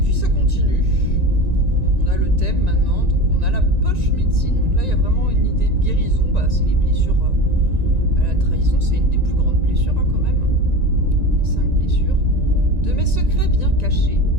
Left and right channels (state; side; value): late; left; 1.9 ms